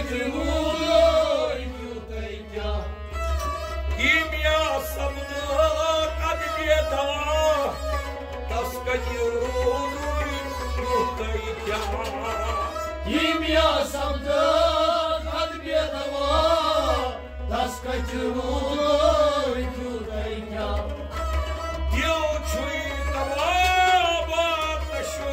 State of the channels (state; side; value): identical; both; correlation 1.00